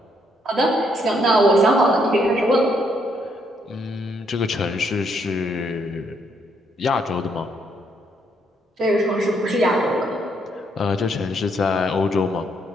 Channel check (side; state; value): both; normal; correlation 0.73